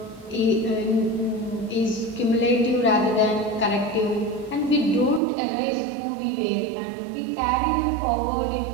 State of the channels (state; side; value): drops out; left; at 5.2 s